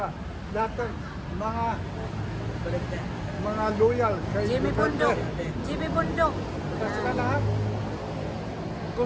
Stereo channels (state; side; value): identical; both; correlation 1.00